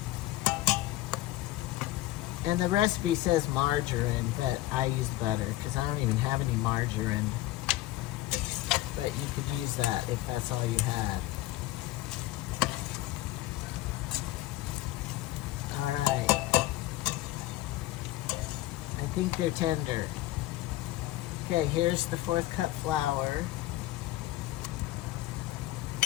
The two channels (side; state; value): right; quieter; 16.4 dB